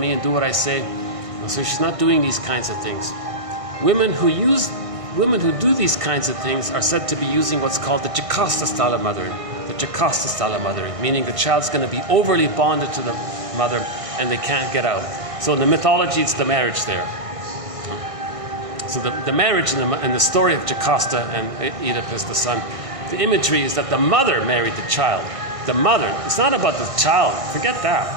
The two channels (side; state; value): left; late; 1.6 ms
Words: and do what I say. So she's not doing these kinds of things. Women who do these kinds of things are said to be using what's called the Jocasta style of mothering. The Jocasta style of mothering, meaning the child's going to be overly bonded to the mother and they can't get out. So in the mythology, it's the marriage there. So the marriage in the story of Jocasta and Oedipus, the son, the imagery is that the mother married the child. The mother, it's not about the child, forget that.